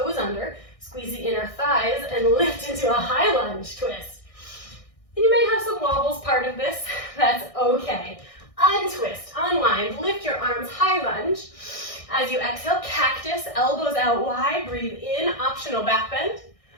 under, squeeze the inner thighs, and lift into a high lunge twist. And you may have some wobbles part of this, that's okay. Untwist, unwind, lift your arms, high lunge. As you exhale, cactus, elbows out wide, breathe in, optional back bend.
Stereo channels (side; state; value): right; late; 1.6 ms